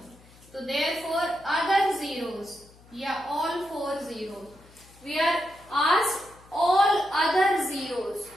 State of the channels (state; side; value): noise; left; hum, 25 dB below the sound